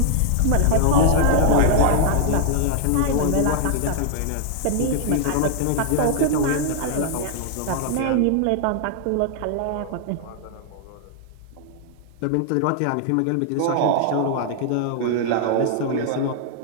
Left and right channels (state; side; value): different; both; correlation -0.01